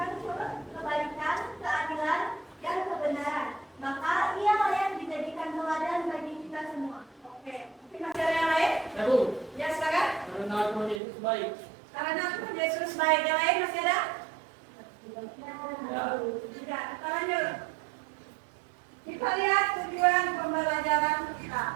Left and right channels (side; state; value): left; drops out; at 11.0 s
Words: kebaikan, keadilan, dan kebenaran. Maka ia layak dijadikan teladan bagi kita semua. Oke, mungkin masih ada yang lain? Bu, Ya, silakan. karena Tuhan Yesus baik. Karena Tuhan Yesus baik. Yang lain masih ada? Ya. Tidak, kita lanjut. Kita lihat tujuan pembelajaran kita.